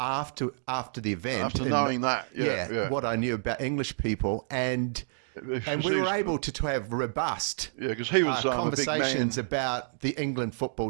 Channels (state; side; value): silent; left; digital silence